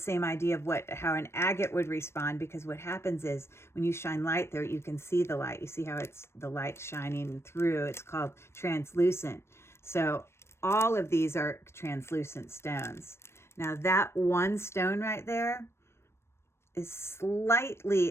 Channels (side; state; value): right; late; 0.12 ms